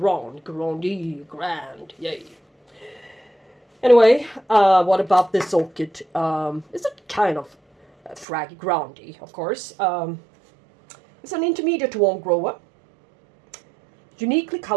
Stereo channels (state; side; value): drops out; left; at 8.2 s